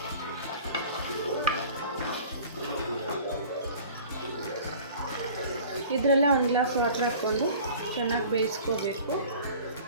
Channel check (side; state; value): both; inverted; correlation -0.45